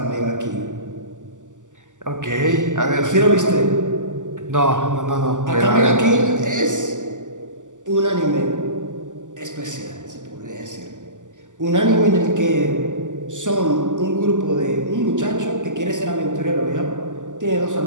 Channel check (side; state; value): left; late; 0.87 ms